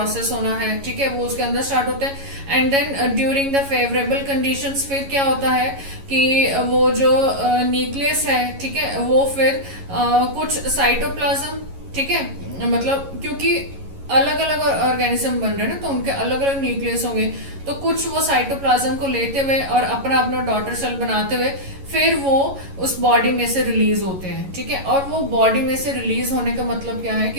होना है, ठीक है, वो उसके अंदर स्टार्ट होता है। And then during the favourable conditions फिर क्या होता है कि वो जो न्यूक्लियस है, ठीक है, वो फिर कुछ साइटोप्लाज्म, ठीक है, मतलब क्योंकि अलग अलग ऑर्गेनिज्म बन रहे हैं ना, तो उनके अलग अलग न्यूक्लियस होंगे, तो कुछ वो साइटोप्लाज्म को लेते हुए और अपना अपना डॉटर सेल बनाते हुए फिर वो उस बॉडी में से रिलीज होते हैं, ठीक है। और वो बॉडी में से रिलीज होने का मतलब क्या है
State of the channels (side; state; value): left; late; 11 ms